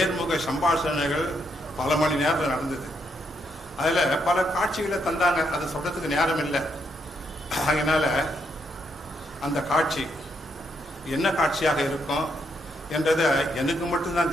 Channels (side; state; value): both; normal; correlation 0.77